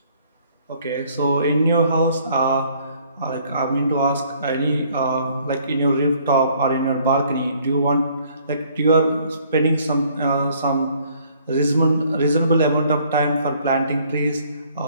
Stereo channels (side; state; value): both; inverted; correlation -0.61